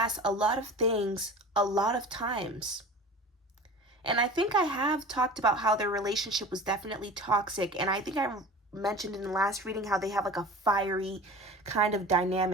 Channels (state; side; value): normal; both; correlation 0.38